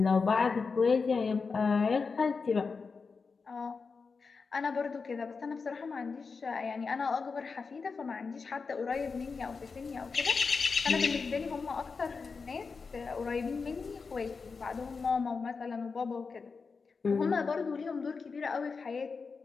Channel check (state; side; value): quieter; right; 4.9 dB